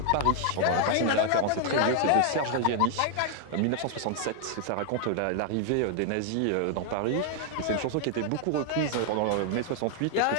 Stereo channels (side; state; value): both; different; correlation 0.00